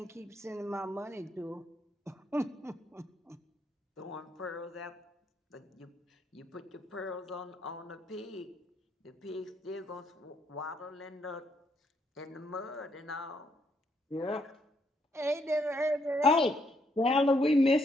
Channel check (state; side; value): normal; both; correlation 0.74